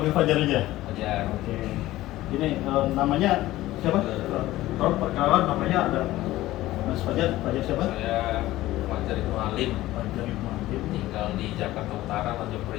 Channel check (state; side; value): quieter; right; 16.3 dB